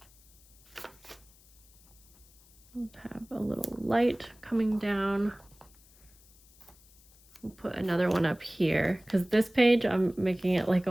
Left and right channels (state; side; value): noise; left; hiss, 27 dB below the sound